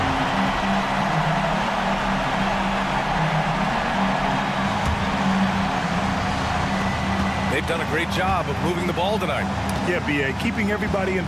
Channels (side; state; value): both; identical; correlation 1.00